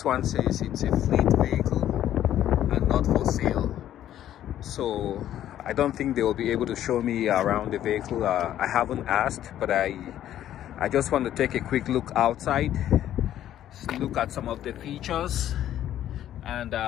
one says it's a fleet vehicle and not for sale, so I don't think they will be able to show me around the vehicle. I haven't asked, but I just want to take a quick look outside, look at some of the features, and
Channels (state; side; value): quieter; right; 11.7 dB